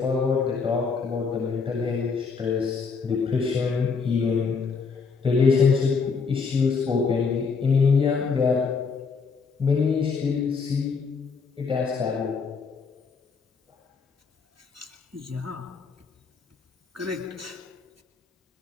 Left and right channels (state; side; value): quieter; right; 5.2 dB